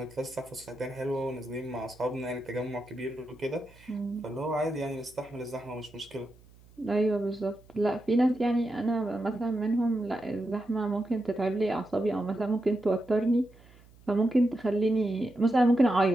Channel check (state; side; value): noise; right; hum, 25 dB below the sound